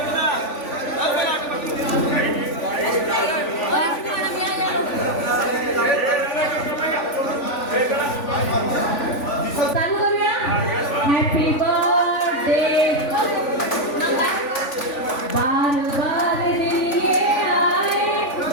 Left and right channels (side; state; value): right; late; 3.5 ms